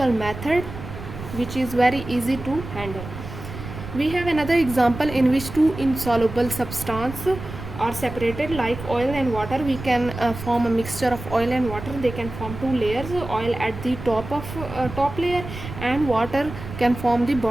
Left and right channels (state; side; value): noise; right; rumble, 10 dB below the sound